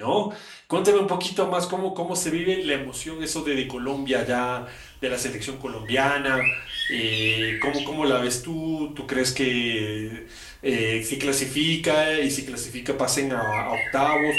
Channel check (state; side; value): identical; both; correlation 1.00